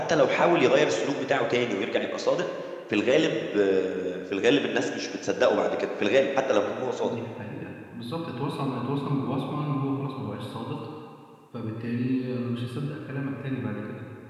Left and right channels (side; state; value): both; identical; correlation 1.00